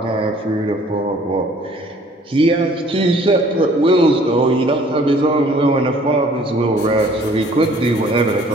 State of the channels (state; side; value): normal; both; correlation 0.56